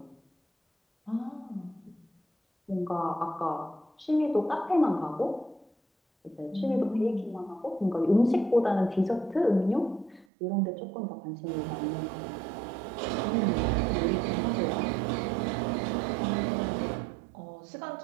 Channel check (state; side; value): drops out; left; at 10.2 s